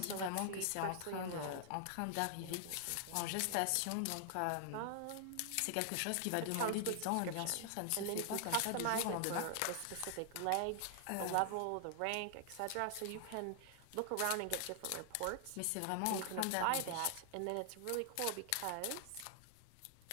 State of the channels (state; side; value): different; both; correlation 0.00